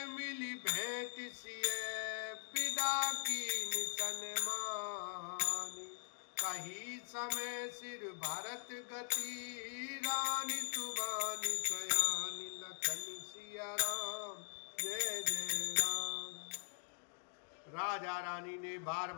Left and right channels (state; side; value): silent; right; digital silence